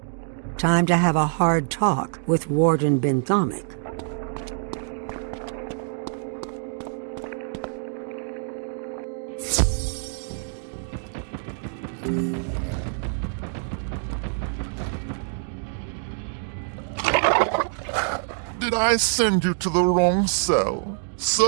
Time to have a hard talk with Warden Benthomic. Did I send you to the wrong cell?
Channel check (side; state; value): left; silent; digital silence